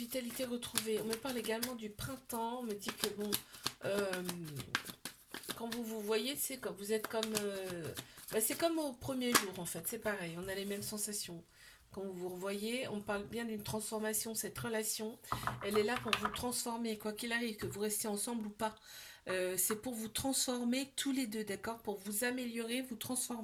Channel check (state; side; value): identical; both; correlation 1.00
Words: retrouvée. On me parle également du printemps. On me dit que bon, euh, quand vous vous voyez, c'est quand vous êtes comme, c'est comme au premier jour en fait. C'est pareil. On a les mêmes sensations. Quand vous vous revoyez, on parle bien d'une transformation. Cette relation, elle est là pour vous transformer, quoi qu'il arrive, que vous restiez ensemble ou pas. C'est pour vous transformer tous les deux, d'accord? Pour vous améliorer, vous